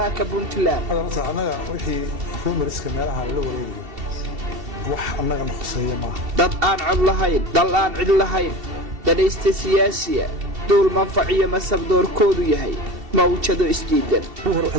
Puntland anaga wixii rumoriska meelaha la wareegay wax anaga noqosay ma dad aan cod lahayn dal aan cid lahayn dadaysta siyaasiya dul manfaciyo masabdoorkoodu yahay mawjado isdiidan hore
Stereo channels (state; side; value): late; left; 2.7 ms